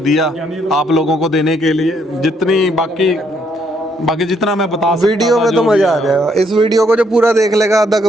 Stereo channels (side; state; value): both; normal; correlation 0.71